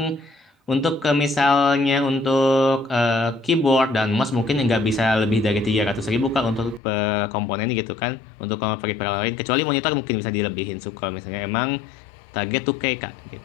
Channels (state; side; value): drops out; right; at 6.8 s